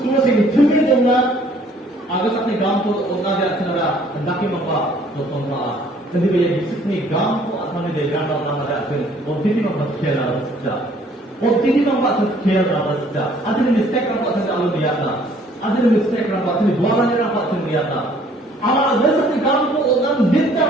na sige, tumigil na, aga sa kanya gawin ko, o na di at sinara, ang laki mga pa, doktor na. Jadi bila disini gampang atau ni dia gampang nama dia tu, orang tidak mampu kira saja. Orang tidak mampu kira saja. Ada ni mistake orang buat saja dia tak. Ada ni mistake orang buat ni dua orang orang buat dia tak. Amal ada satu gampang orang tidak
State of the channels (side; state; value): both; normal; correlation 0.59